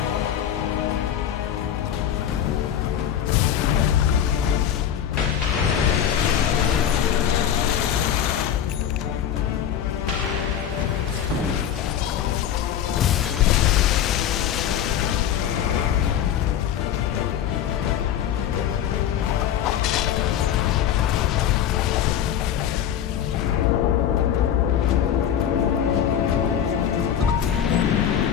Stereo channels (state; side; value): quieter; right; 9.7 dB